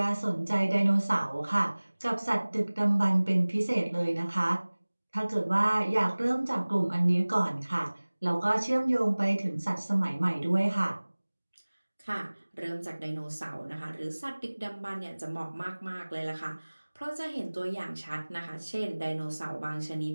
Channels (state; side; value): inverted; both; correlation -1.00